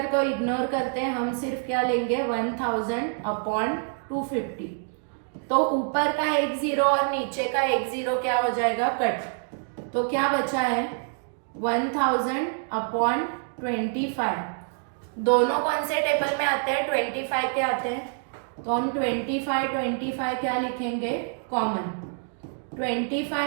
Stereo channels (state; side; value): silent; left; 60 dB below the other